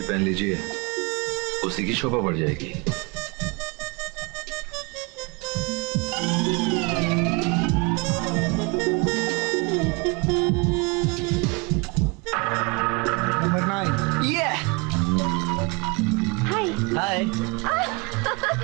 पहन लीजिए, उसी की शोभा बढ़ जाएगी। नंबर 9। ये हाय। हाय।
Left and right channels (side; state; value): left; quieter; 28.7 dB